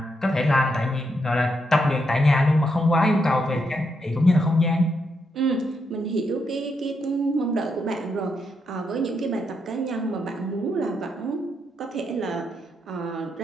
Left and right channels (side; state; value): both; normal; correlation 0.80